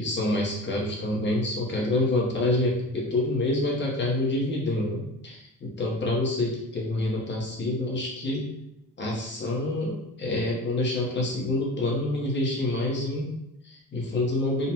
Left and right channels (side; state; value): both; normal; correlation 0.34